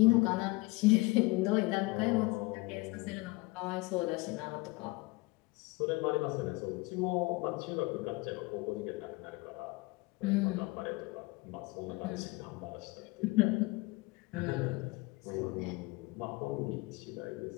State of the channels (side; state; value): right; quieter; 23.9 dB